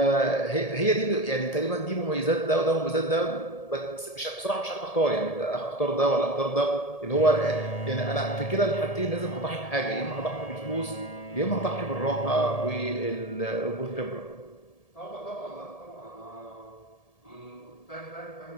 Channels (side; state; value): right; late; 1.7 ms